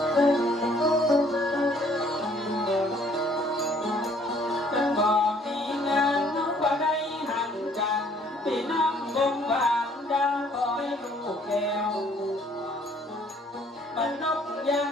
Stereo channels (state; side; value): normal; both; correlation 0.61